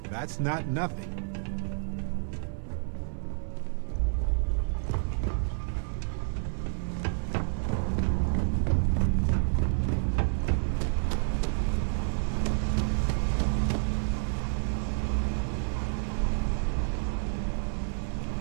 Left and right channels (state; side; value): silent; left; 58 dB below the other